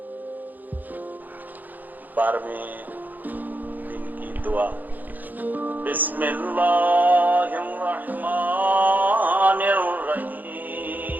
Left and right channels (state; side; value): late; left; 0.084 ms